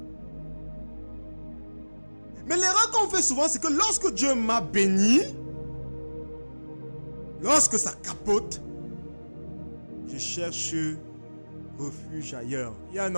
Mais l'erreur qu'on fait souvent, c'est que lorsque Dieu m'a béni, lorsque ça capote, je cherche refuge ailleurs. Il y a un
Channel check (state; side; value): inverted; both; correlation -1.00